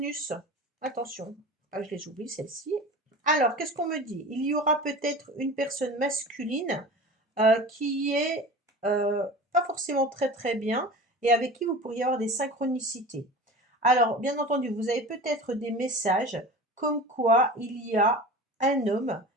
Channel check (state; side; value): normal; both; correlation 0.35